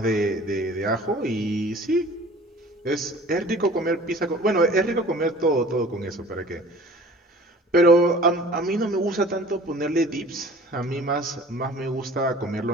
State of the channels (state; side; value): normal; both; correlation 0.46